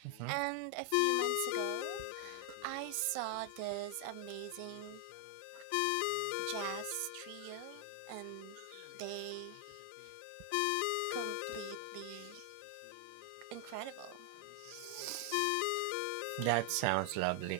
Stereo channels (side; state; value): both; different; correlation 0.00